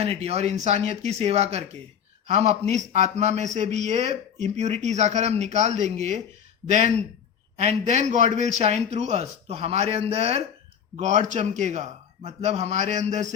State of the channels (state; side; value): quieter; right; 8.2 dB